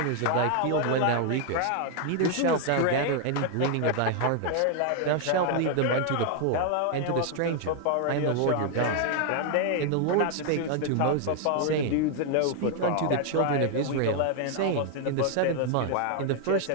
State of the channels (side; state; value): both; different; correlation 0.00